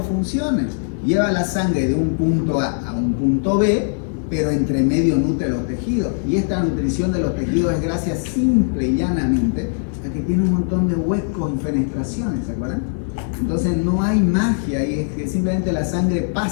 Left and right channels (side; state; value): right; silent; digital silence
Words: funciones. lleva la sangre de un punto A a un punto B, pero entre medio nutre los tejidos. Y esta nutrición de los tejidos es gracias simple y llanamente a que tiene un montón de huecos y fenestraciones, ¿se acuerdan? Entonces no hay magia ahí, es que simplemente la sangre